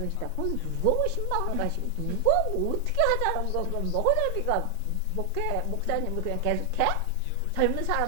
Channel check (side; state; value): both; different; correlation 0.00